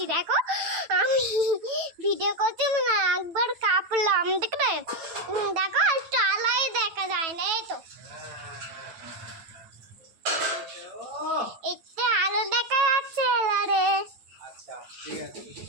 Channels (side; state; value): left; late; 9.0 ms